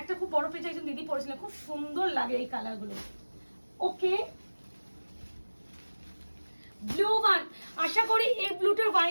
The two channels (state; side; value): inverted; both; correlation -1.00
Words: খুব বড় পেজে একজন দিদি পড়েছিলেন, খুব সুন্দর লাগে এই কালারগুলো। ওকে, ব্লু ওয়ান, আশা করি এই ব্লুটার